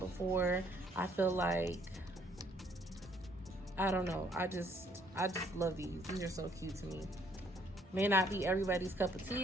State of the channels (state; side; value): normal; both; correlation 0.65